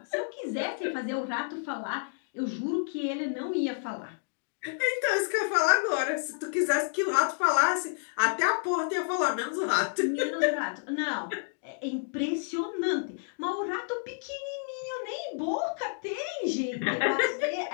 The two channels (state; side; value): silent; right; digital silence